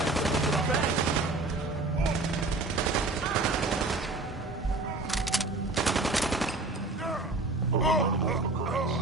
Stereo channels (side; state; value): left; quieter; 3.2 dB